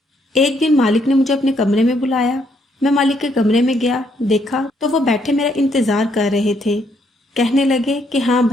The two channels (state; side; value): normal; both; correlation 0.72